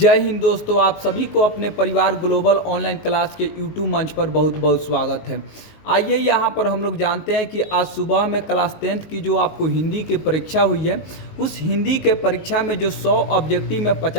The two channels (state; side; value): late; right; 19 ms